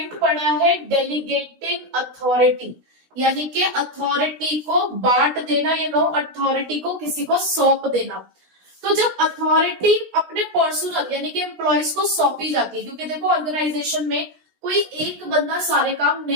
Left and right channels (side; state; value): left; late; 16 ms